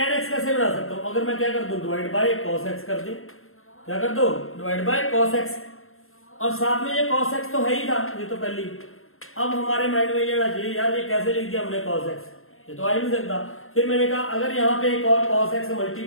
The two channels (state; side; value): late; right; 0.61 ms